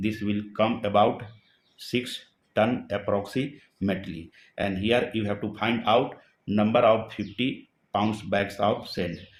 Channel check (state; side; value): identical; both; correlation 1.00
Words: will come about 6 ton approximately. And here you have to find out number of 50 pounds bags of sand.